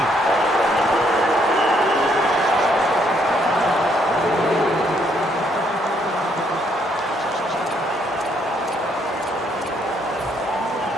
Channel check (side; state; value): both; normal; correlation 0.70